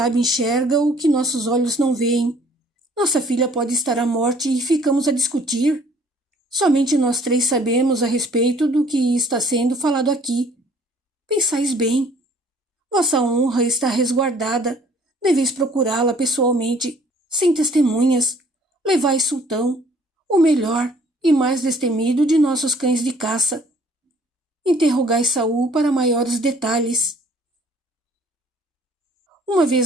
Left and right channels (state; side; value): normal; both; correlation 0.58